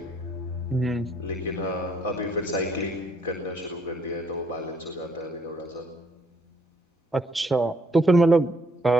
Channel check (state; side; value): normal; both; correlation 0.67